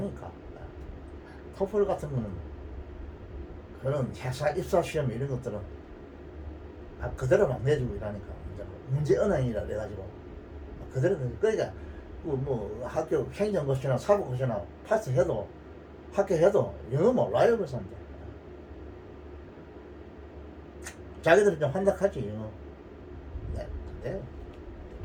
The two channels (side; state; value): both; identical; correlation 1.00